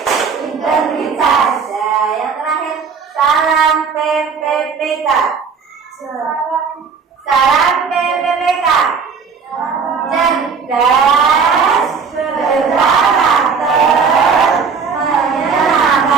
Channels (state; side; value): quieter; left; 5.7 dB